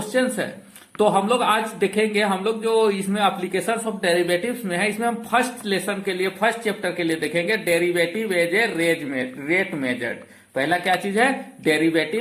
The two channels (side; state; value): both; identical; correlation 1.00